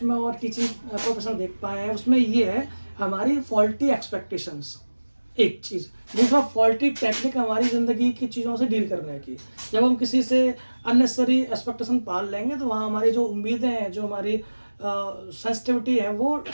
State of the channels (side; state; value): both; inverted; correlation -1.00